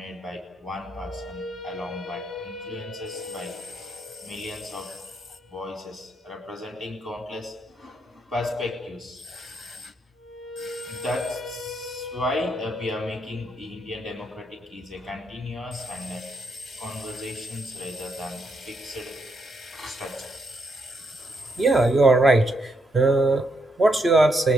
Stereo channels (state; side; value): normal; both; correlation 0.78